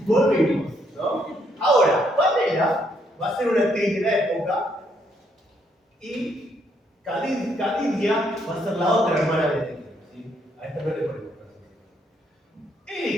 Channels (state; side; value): normal; both; correlation 0.72